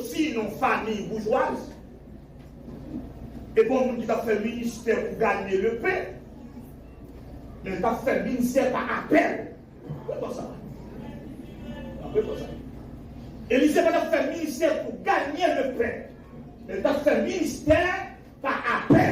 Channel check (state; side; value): identical; both; correlation 1.00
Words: dans une famille bourgeoise. Et bon, nous qui a fait ministère pour gagner le pain. Mais il a fait ministère par appel. Pourquoi ça? Pourquoi ça? Élisée n'a pas fait ministère pour gagner le pain. Mais il a fait ministère par